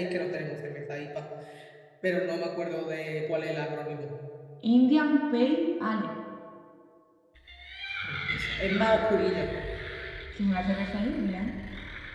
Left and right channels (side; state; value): both; identical; correlation 1.00